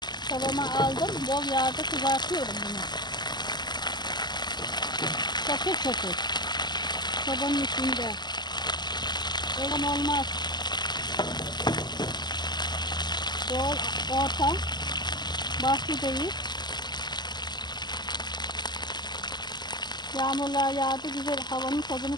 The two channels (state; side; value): late; right; 0.21 ms